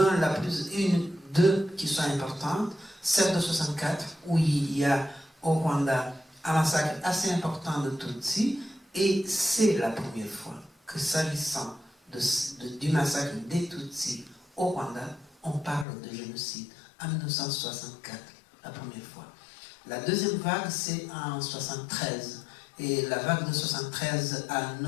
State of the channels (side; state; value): right; drops out; at 15.9 s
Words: deux qui sont importantes. Celle de 64, où il y a au Rwanda un massacre assez important de Tutsis, et c'est la première fois que, s'agissant du massacre des Tutsis au Rwanda, on parle de génocide en 1964, la première fois. La deuxième vague, c'est en 1973, et la vague de 1973 a